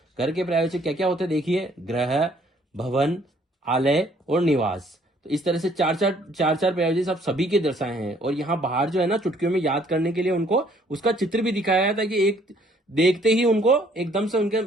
पर्यायवाची क्या क्या होते हैं देखिए, ग्रह, भवन, आलय और निवास। तो इस तरह से चार चार पर्यायवाची शब्द सभी के दर्शाए हैं। और यहाँ बाहर जो है ना, चुटकियों में याद करने के लिए उनको उसका चित्र भी दिखाया है, ताकि एक देखते ही उनको एकदम से उनके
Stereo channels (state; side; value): normal; both; correlation 0.62